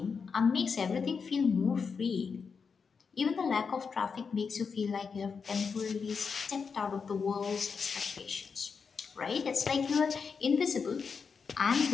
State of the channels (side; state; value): right; quieter; 5.6 dB